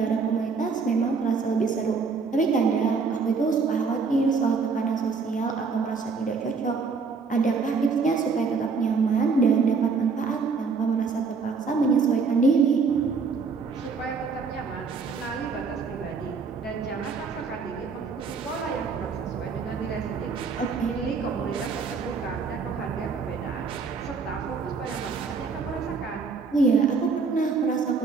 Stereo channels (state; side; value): quieter; left; 4.9 dB